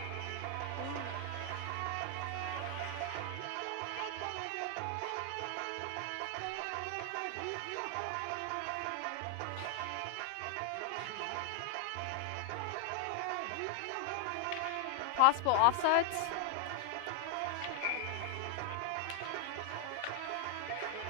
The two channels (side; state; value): both; different; correlation 0.00